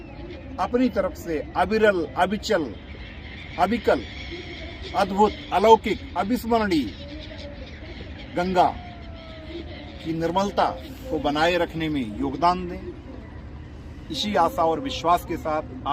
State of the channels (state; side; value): identical; both; correlation 1.00